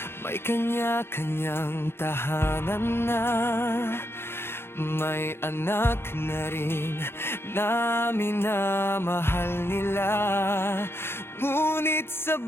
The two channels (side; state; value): right; late; 0.11 ms